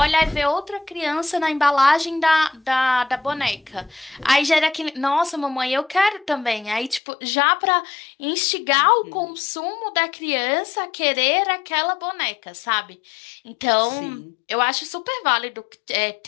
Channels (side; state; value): right; drops out; at 7.0 s